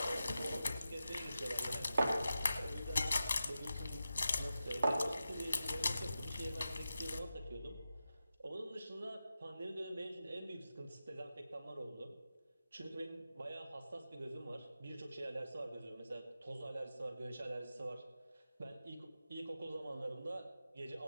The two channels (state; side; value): inverted; both; correlation -0.91